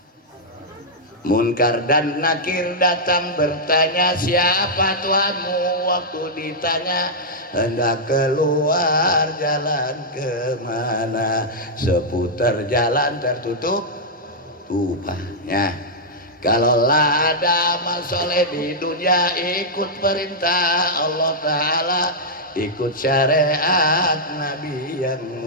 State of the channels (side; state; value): both; normal; correlation -0.08